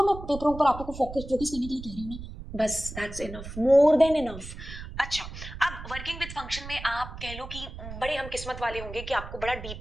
मैं पेपरों पर आपको फोकस करने के लिए कह रही हूँ ना, बस that's enough, more than enough. अच्छा, अब वर्किंग विद फंक्शन में आप कह लो कि बड़े हम किस्मत वाले होंगे कि आपको बड़ा डीप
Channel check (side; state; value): right; noise; rumble, 11 dB below the sound